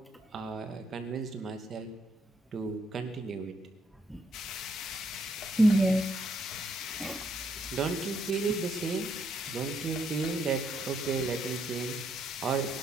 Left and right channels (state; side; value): normal; both; correlation 0.74